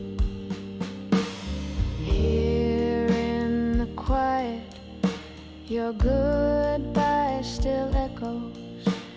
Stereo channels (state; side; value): identical; both; correlation 1.00